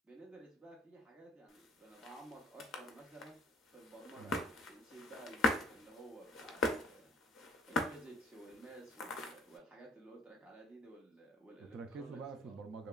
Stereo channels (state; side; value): normal; both; correlation 0.58